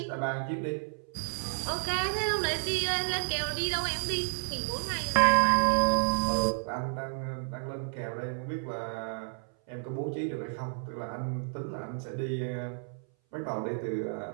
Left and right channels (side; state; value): left; silent; 57 dB below the other